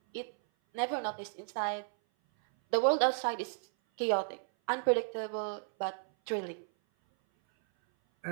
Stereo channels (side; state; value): left; silent; 55 dB below the other